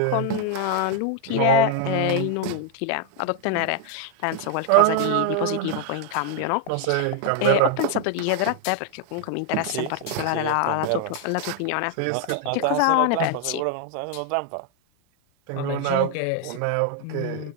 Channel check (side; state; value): both; different; correlation 0.00